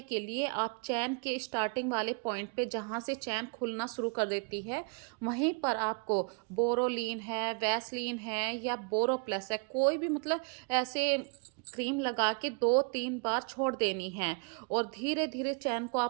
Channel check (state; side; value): quieter; left; 36.4 dB